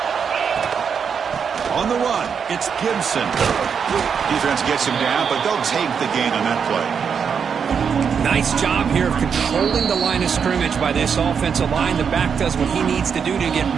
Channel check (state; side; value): quieter; left; 6.7 dB